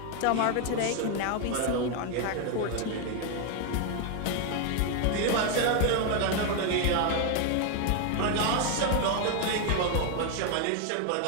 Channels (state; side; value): different; both; correlation 0.01